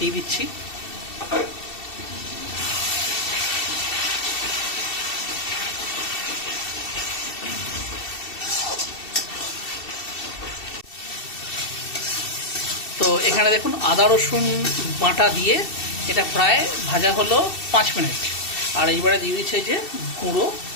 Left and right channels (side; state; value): right; late; 2.7 ms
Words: দিচ্ছি। তো এখানে দেখুন আদা রসুন বাটা দিয়ে এটা প্রায় ভাজা হলো 5 মিনিট। আর এইবারে দিয়ে দিচ্ছে যে গুঁড়ো